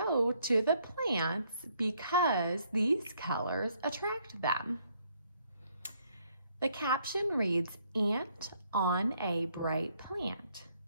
to the plants because these colors attract them. The caption reads, "Ant on a bright plant."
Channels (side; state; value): both; inverted; correlation -0.69